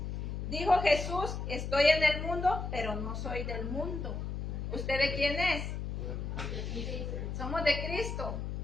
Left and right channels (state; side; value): noise; left; hum, 4 dB below the sound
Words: Dijo Jesús, estoy en el mundo, pero no soy del mundo. ¿Usted de quién es? Somos de Cristo.